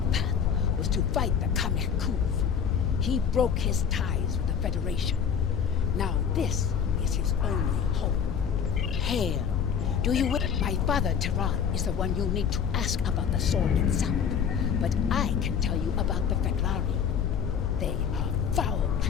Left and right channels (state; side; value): quieter; right; 7.4 dB